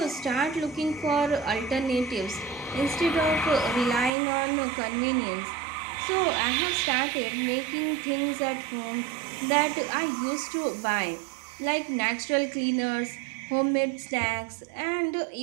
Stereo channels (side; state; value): left; drops out; at 4.1 s